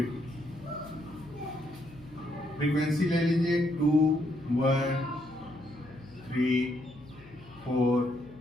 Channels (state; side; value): noise; left; hum, 22 dB below the sound